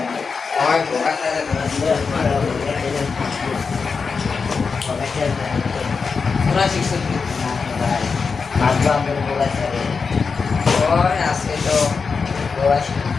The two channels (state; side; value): quieter; right; 5.1 dB